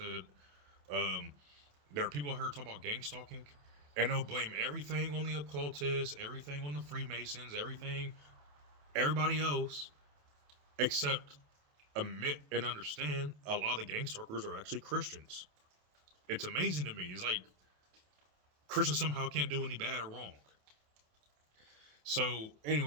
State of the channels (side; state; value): left; late; 27 ms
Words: um there are people out here talking about gang stalking, and they'll blame everything on the occultists, everything on the Freemasons, everybody else, except admit and understand a lot of the gang stalkers are actually Christians. It's amazing to me. It's like Christians somehow can't do any bad or wrong. So